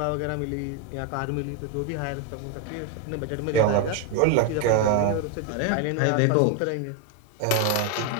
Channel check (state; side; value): different; both; correlation 0.01